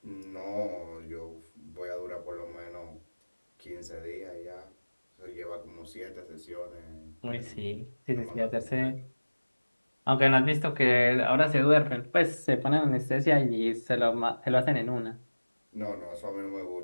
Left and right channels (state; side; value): inverted; both; correlation -1.00